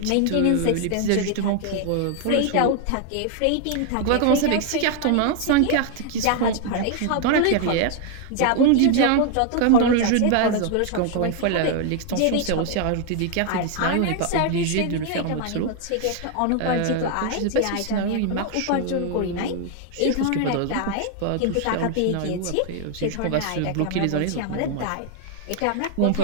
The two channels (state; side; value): different; both; correlation 0.00